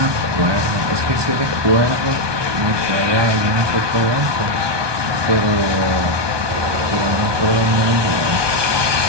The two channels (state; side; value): late; left; 1.2 ms